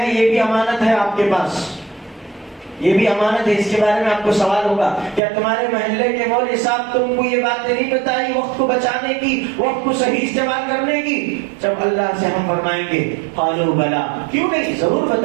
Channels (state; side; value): drops out; left; at 5.2 s